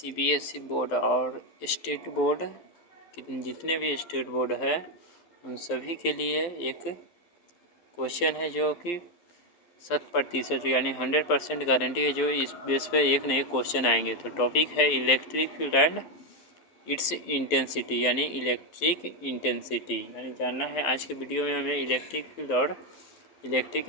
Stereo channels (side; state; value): right; late; 12 ms